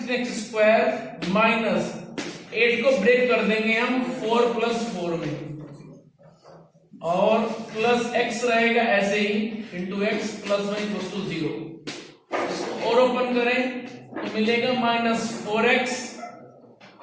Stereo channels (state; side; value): identical; both; correlation 1.00